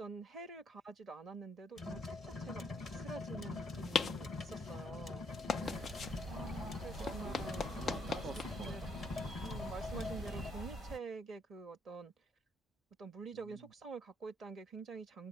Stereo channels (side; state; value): both; normal; correlation 0.72